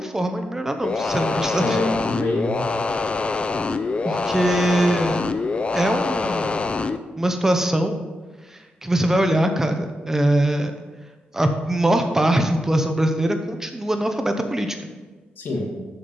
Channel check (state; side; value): normal; both; correlation 0.87